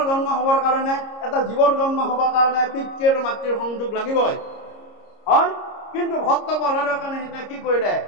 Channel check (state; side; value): late; right; 30 ms